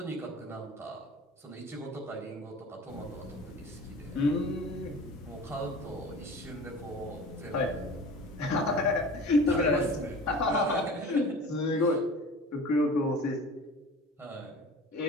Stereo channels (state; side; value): normal; both; correlation 0.39